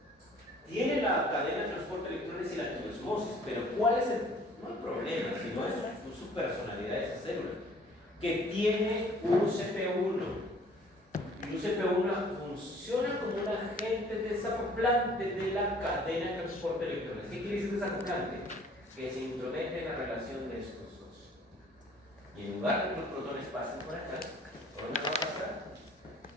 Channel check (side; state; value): both; normal; correlation 0.54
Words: Tiene la cadena de transporte de electrones y la quiosmosis, pero ¿cuál es el? No hay problema, sino es su personalidad de esa célula, que tiene un CP1. Y un CP1 funciona como un agente desacoplante de la cadena de transporte de electrones. ¿Qué quiere decir desacoplante? Que se intromete en la relación de estos dos. Y en lugar de que los protones pasen por acá, ¿por dónde va a pasar?